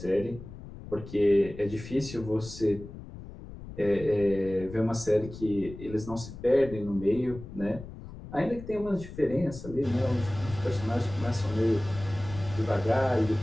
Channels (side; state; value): left; noise; rumble, 13 dB below the sound